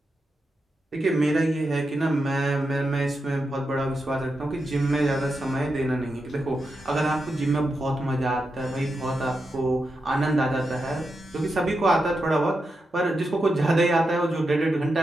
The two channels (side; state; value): both; normal; correlation 0.87